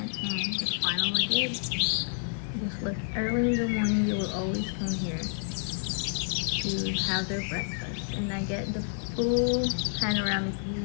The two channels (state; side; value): silent; right; digital silence